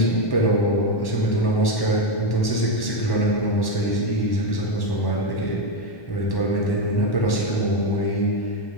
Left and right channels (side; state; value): right; late; 1.1 ms